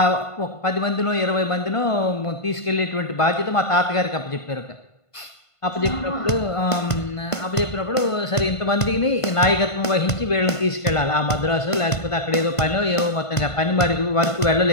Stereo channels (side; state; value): right; late; 1.5 ms